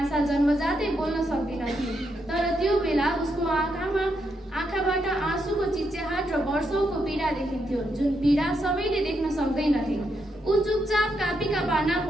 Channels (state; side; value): normal; both; correlation 0.80